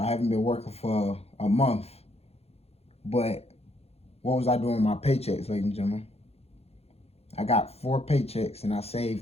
haven't been working for a month. But what was I doing with my paychecks, ladies and gentlemen? I got 4 paychecks and I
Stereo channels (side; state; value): right; late; 0.29 ms